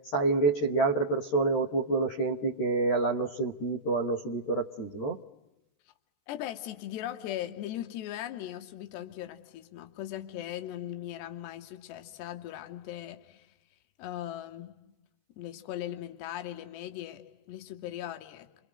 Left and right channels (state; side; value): late; right; 14 ms